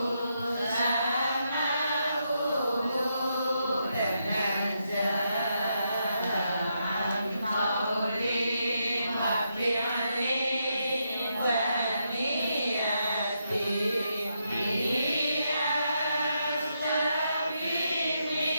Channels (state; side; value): inverted; both; correlation -0.81